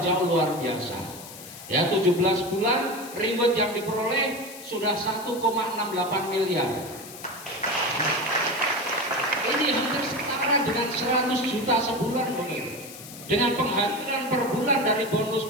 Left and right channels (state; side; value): noise; left; hiss, 15 dB below the sound